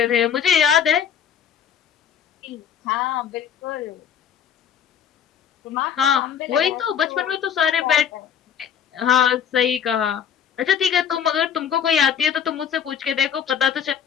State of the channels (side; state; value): right; quieter; 8.2 dB